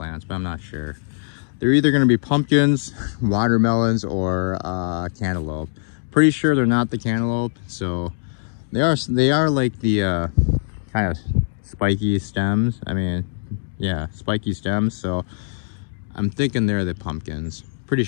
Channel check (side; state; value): right; silent; digital silence